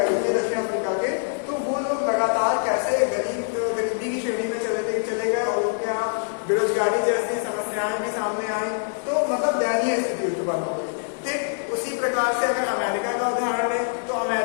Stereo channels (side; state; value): right; silent; digital silence